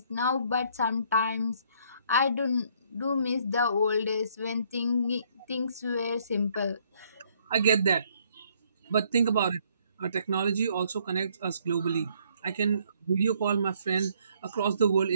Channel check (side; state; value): both; inverted; correlation -0.67